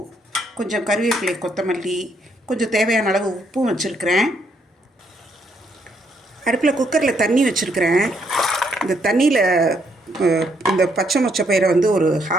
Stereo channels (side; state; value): both; normal; correlation 0.72